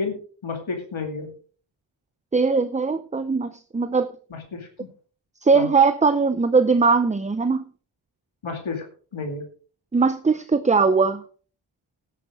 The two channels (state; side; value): quieter; left; 3.8 dB